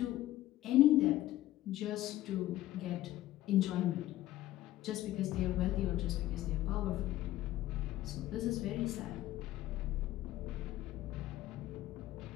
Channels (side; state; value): right; quieter; 15.0 dB